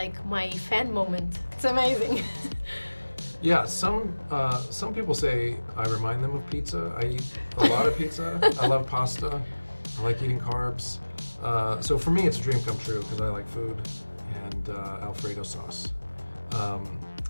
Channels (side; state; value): both; inverted; correlation -1.00